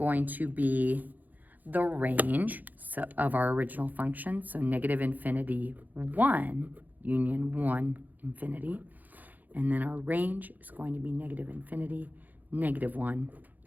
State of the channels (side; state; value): left; late; 0.083 ms